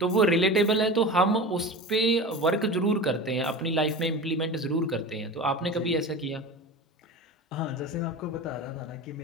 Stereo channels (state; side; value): normal; both; correlation 0.31